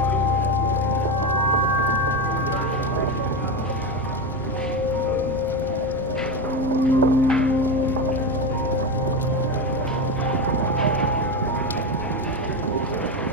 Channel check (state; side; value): normal; both; correlation 0.16